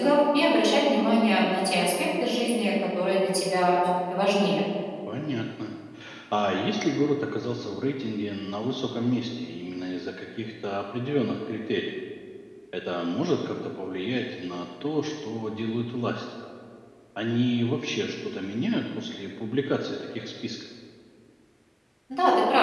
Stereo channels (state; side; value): identical; both; correlation 1.00